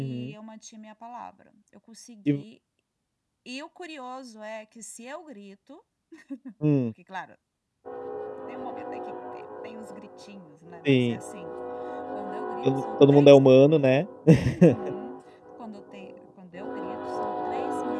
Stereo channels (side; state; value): both; identical; correlation 1.00